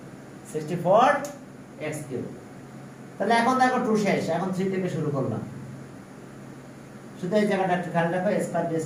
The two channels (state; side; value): identical; both; correlation 1.00